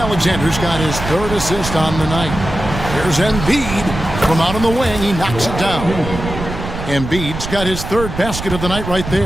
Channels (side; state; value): right; noise; rumble, 7 dB below the sound